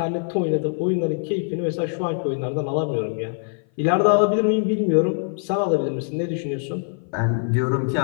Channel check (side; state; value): right; silent; 58 dB below the other